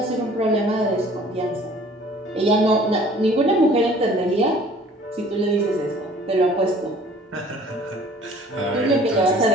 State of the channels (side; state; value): both; normal; correlation 0.52